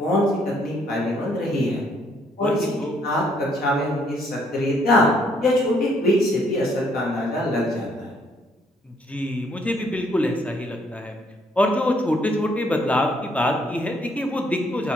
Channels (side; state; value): both; normal; correlation 0.68